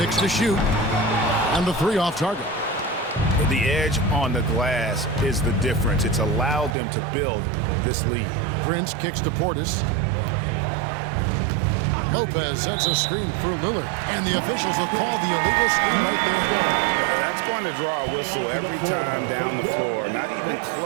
to shoot. And the 3 off target. The edge on the glass is the difference. It's allowed them to build this lead. Prince kicks to Portis. Lopez sets a screen for Lillard. And the officials will call the illegal screen right there. That's going to draw a whistle every time down the floor. Not even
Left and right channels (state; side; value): drops out; left; at 6.7 s